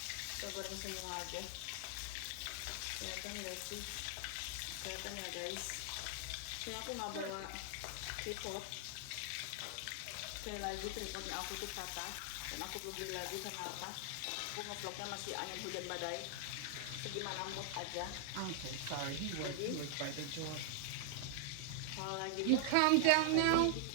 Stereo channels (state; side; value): different; both; correlation 0.00